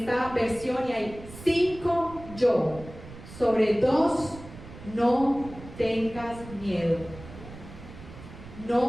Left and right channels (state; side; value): noise; right; rumble, 16 dB below the sound